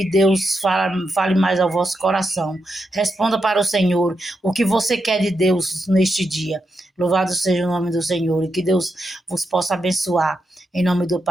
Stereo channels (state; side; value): normal; both; correlation 0.85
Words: Deus fale mais ao vosso coração. Responda para o Senhor o que você quer de Deus neste dia. Louvado seja o nome do Senhor, e que Deus vos possa abençoar, em nome do